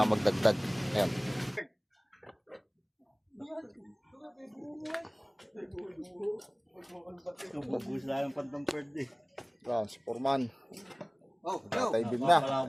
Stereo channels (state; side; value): identical; both; correlation 1.00